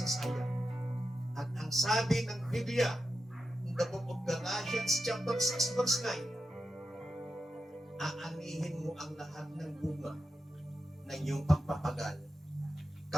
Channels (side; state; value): both; normal; correlation 0.90